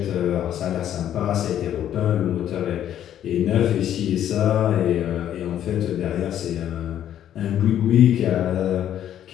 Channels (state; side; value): quieter; right; 10.8 dB